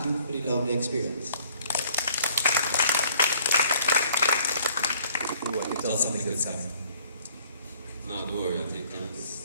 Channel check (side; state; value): both; inverted; correlation -0.59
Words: you for the lovely experience. Tell something good, Sam. No, don't worry, I think